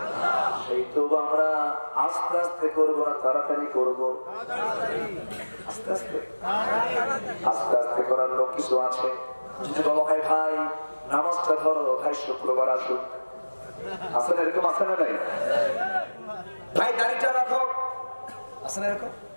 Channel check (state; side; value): inverted; both; correlation -1.00